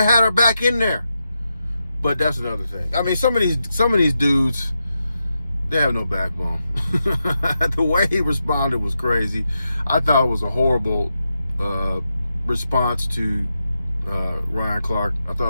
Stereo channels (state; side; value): inverted; both; correlation -0.87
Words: had her back in there. But that's another thing. I mean, some of these dudes, they have no backbone. The way he responded was crazy. I thought it was a horrible response to Ryan Clark. I